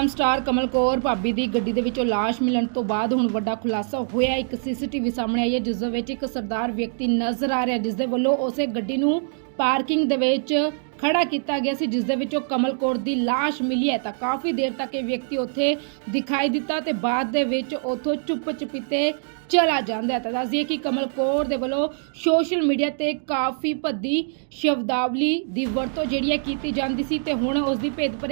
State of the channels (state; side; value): silent; left; 63 dB below the other